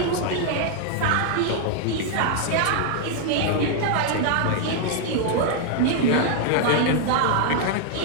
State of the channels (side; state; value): both; different; correlation 0.00